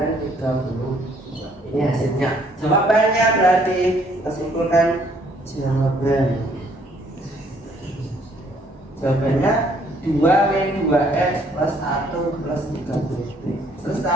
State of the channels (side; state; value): both; normal; correlation 0.64